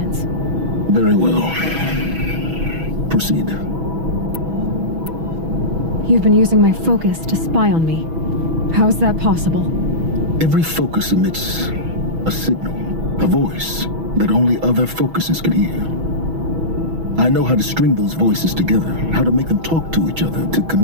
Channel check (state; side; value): late; left; 6.1 ms